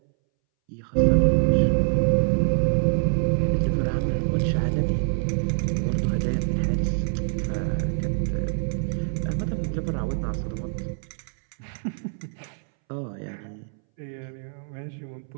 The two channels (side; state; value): left; silent; 62 dB below the other